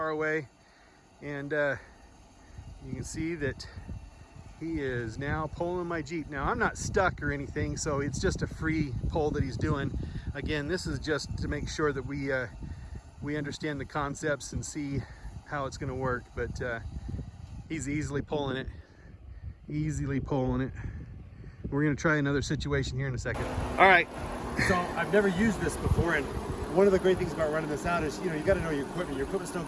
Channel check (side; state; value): both; identical; correlation 1.00